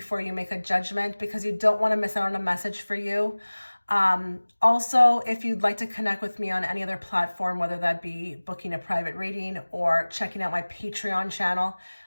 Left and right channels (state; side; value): inverted; both; correlation -1.00